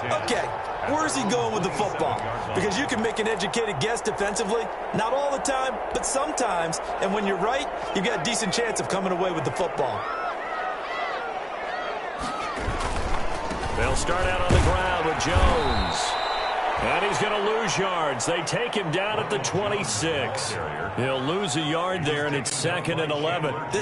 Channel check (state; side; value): identical; both; correlation 1.00